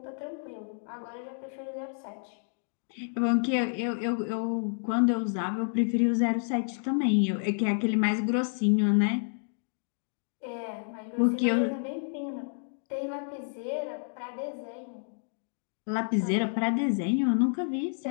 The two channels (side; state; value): right; silent; digital silence